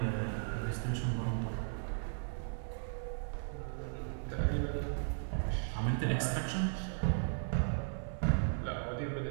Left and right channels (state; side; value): silent; left; 54 dB below the other